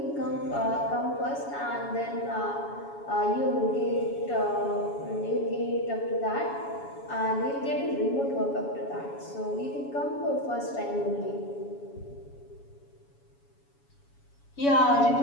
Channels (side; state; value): right; late; 7.1 ms